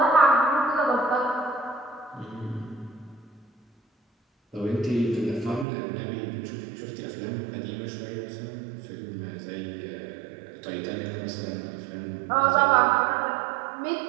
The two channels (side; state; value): left; drops out; at 5.7 s